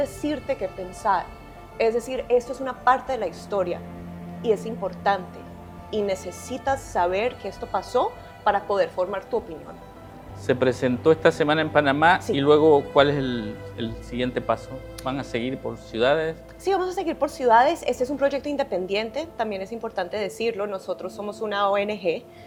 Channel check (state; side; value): identical; both; correlation 1.00